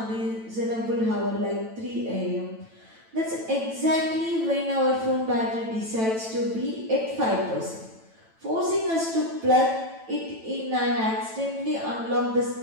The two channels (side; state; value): left; late; 9.0 ms